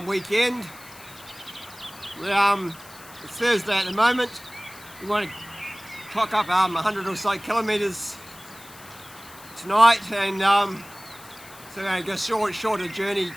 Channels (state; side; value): noise; left; hiss, 20 dB below the sound